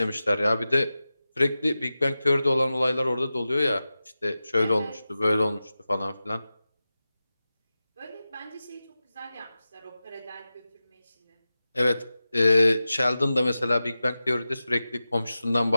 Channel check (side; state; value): both; inverted; correlation -0.94